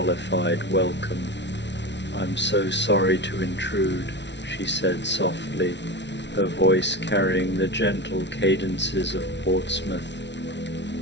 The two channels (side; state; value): right; late; 0.51 ms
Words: welcome. "I'm so sorry to intrude," she said softly, her voice carrying the gentle cadences of Portsmouth.